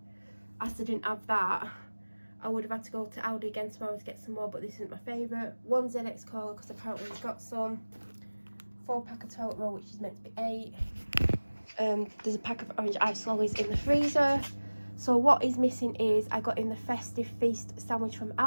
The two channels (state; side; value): inverted; both; correlation -1.00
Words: Asda didn't have that, I would have had to go to Aldi again tomorrow to get some more, but this isn't my favourite. 1 ZX Cola because apparently we've got some. 4-pack of toilet roll, which is meant to be 8. There's a pack of orange ice lollies in the freezer. So what is missing is I got in the festive feast sandwich from